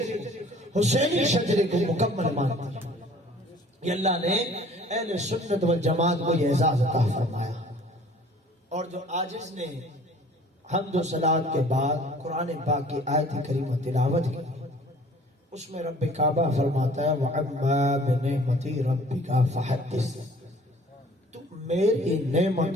حسینی شجرے کو مکمل مانتے ہیں. یہ اللہ نے اہل سنت والجماعت کو یہ اعزاز عطا فرمایا. اور جو عاجز نے حمد و صلات کے بعد قرآن پاک کی آیت کریمہ تلاوت کی، اس میں رب کعبہ فرماتا ہے وَعَمَّا بِنِعْمَتِ رَبِّكَ فَحَدِّثْ، تم میری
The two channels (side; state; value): both; normal; correlation 0.52